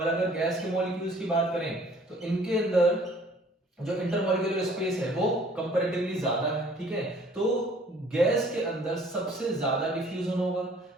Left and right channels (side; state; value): both; normal; correlation 0.56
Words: अगर गैस के मॉलिक्यूल्स की बात करें तो इनके अंदर जो इंटरमॉलिक्यूलर स्पेस है वो कंपैरेटिवली ज्यादा है, ठीक है। तो गैस के अंदर सबसे ज्यादा डिफ्यूजन होगा